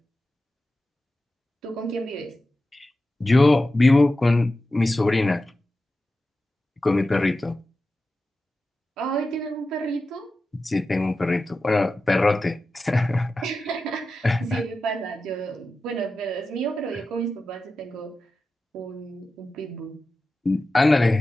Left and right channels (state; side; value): normal; both; correlation 0.93